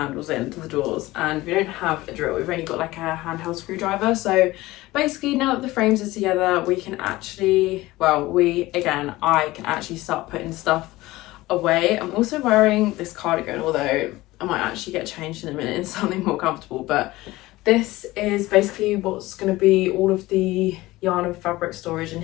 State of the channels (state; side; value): quieter; right; 18.6 dB